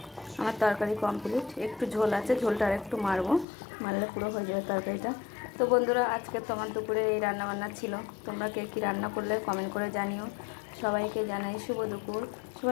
আমার তরকারি কমপ্লিট। একটু ঝোল আছে, ঝোলটা আর একটু মারলে পুরো হয়ে যাবে তরকারিটা। তো বন্ধুরা আজকে তোমার দুপুরে এই রান্নাবান্না ছিল। তোমরা কে কী রান্না করলে কমেন্ট করে জানিও। সবাইকে জানাই শুভ দুপুর।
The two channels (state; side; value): drops out; right; at 3.5 s